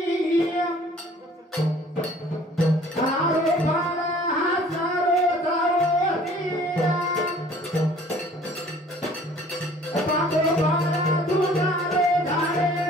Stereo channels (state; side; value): normal; both; correlation 0.53